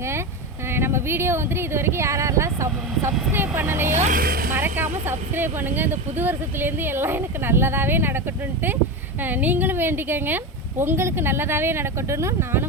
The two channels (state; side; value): normal; both; correlation 0.19